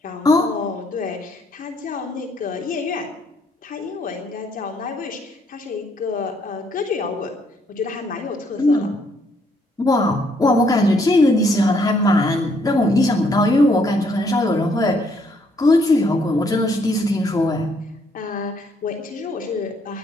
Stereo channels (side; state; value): both; normal; correlation 0.69